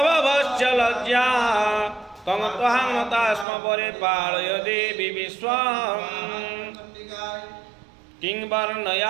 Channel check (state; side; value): drops out; left; at 3.5 s